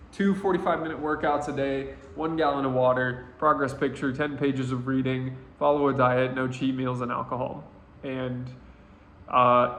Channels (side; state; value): both; identical; correlation 1.00